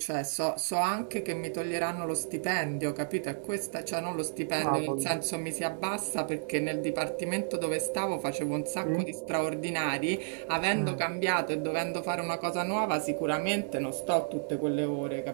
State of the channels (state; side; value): silent; left; digital silence